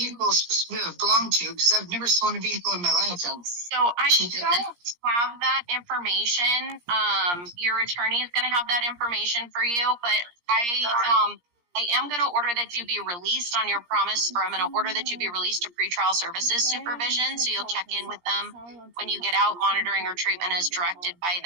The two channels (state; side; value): late; left; 17 ms